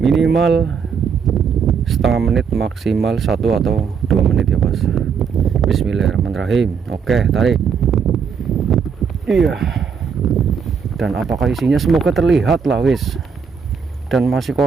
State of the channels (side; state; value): left; quieter; 6.3 dB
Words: setengah menit, maksimal 1 atau 2 menit ya bos. Bismillahirrahmanirrahim. Oke, tarik. Iya. Dan apakah isinya? Semoga terlihat lah wis. Dan masih